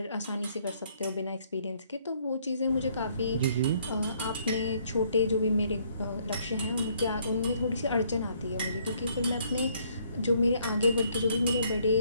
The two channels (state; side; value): inverted; both; correlation -0.66